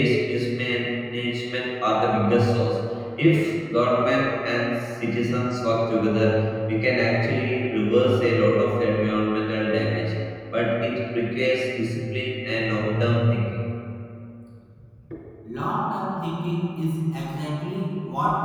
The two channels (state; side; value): identical; both; correlation 1.00